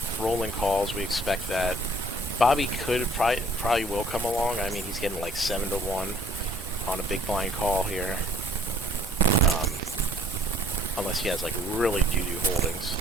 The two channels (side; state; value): both; normal; correlation 0.58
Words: Rolling calls. We expect that. Bobby could probably will come along. I mean, he's getting like 7-1 on a big blind call here. Unless he has like really doo-doo holdings,